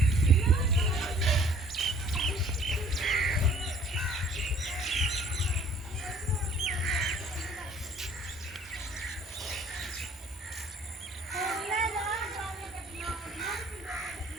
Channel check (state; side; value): normal; both; correlation 0.56